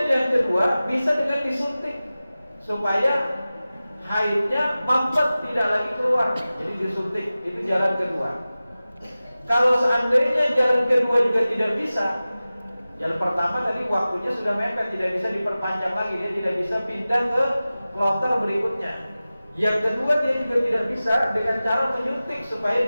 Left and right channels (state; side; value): inverted; both; correlation -0.96